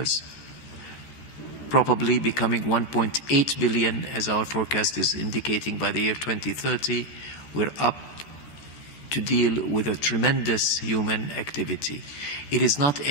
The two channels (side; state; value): right; late; 14 ms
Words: probably becoming 1.8 billion, as our forecast is indicating by the year 2030. We're up to deal with a tremendous human activity. It is not